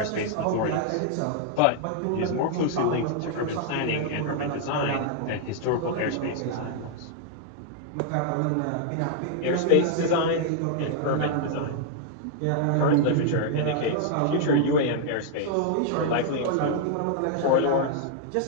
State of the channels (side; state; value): both; different; correlation 0.00